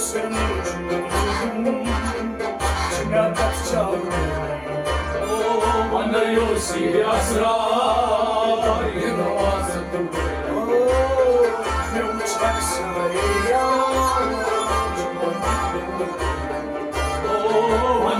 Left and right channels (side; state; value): both; identical; correlation 1.00